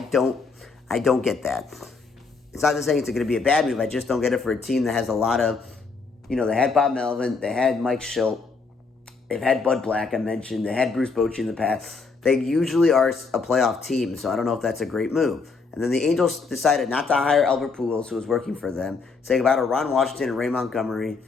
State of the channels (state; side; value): quieter; right; 4.5 dB